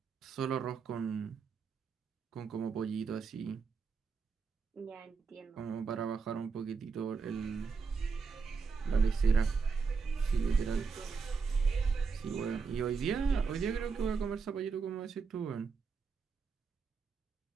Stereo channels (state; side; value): quieter; left; 5.2 dB